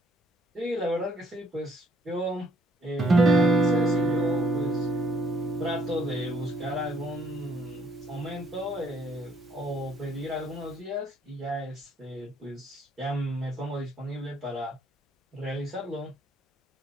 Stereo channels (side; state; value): both; normal; correlation 0.67